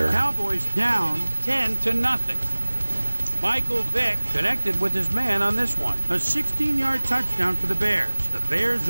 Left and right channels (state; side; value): inverted; both; correlation -1.00